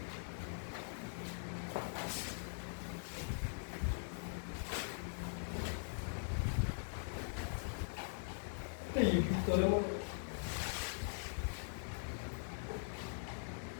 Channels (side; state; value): right; silent; digital silence